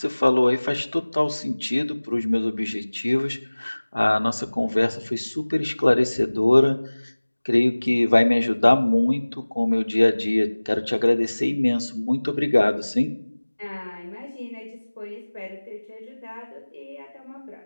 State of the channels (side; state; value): both; inverted; correlation -1.00